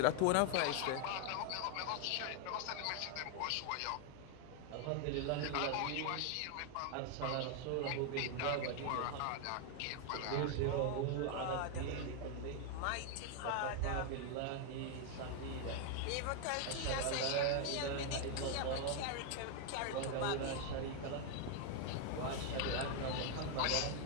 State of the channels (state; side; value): different; both; correlation 0.01